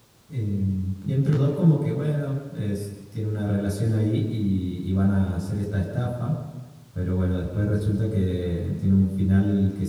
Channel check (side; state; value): both; identical; correlation 1.00